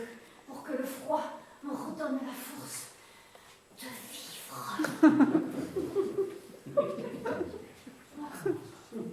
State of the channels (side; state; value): both; identical; correlation 1.00